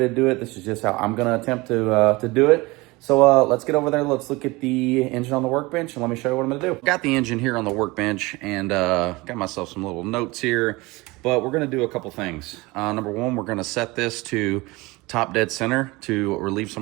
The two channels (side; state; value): left; quieter; 22.8 dB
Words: do it. This is just how I'm going to attempt to do it. So let's get over there. Let's look at the engine on the workbench and let me show you what I'm going to do. Got the engine here on the workbench and got myself some little notes here. But we're going to do a couple things. Number one, we're going to set this to top dead center to relieve